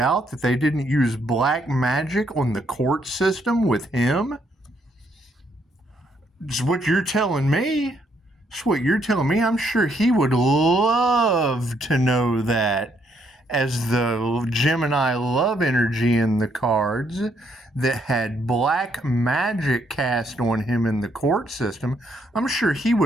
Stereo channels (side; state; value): both; normal; correlation 0.72